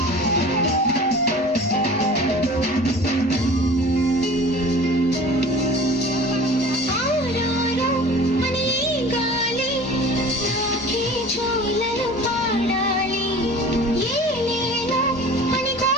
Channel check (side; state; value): both; normal; correlation 0.42